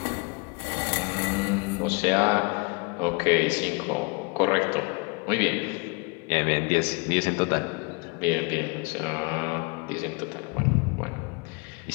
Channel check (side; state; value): right; quieter; 30.6 dB